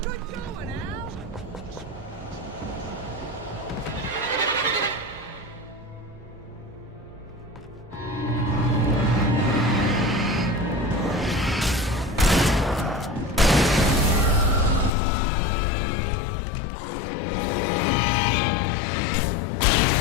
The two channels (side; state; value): right; drops out; at 14.9 s